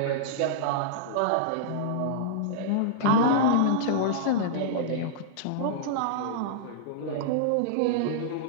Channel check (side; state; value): both; different; correlation -0.02